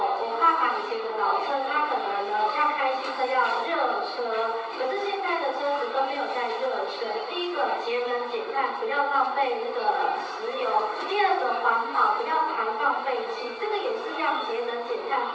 爸爸以前的老车，他可能呢要开新车要热车，可是现在的车子都没有在热车。第一个节能减碳，不要浪费那个石油；第二个环保，不要排放废气。这个也是要节能减碳，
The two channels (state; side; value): identical; both; correlation 1.00